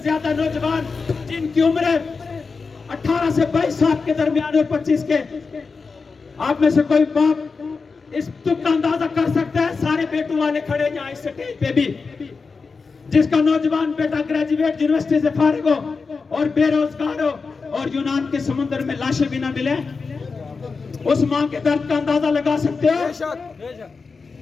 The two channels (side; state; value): right; quieter; 4.6 dB